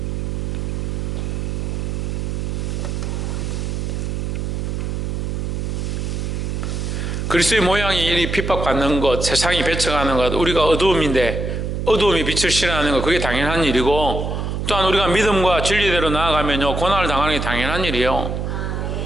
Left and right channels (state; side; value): noise; right; hum, 2 dB below the sound